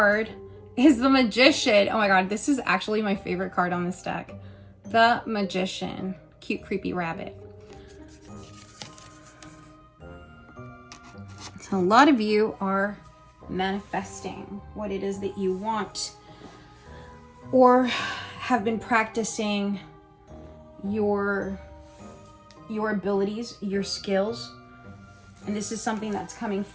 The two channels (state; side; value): identical; both; correlation 1.00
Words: is the Magician. Oh my God, this is actually my favorite card on this deck. The Magician. Cute, creepy rabbit. So a lot of you are manifesting what it is that you want, or have been practicing your abilities, your skills. And this is something that's coming